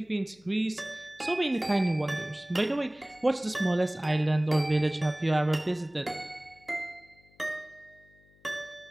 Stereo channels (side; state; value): left; noise; hum, 30 dB below the sound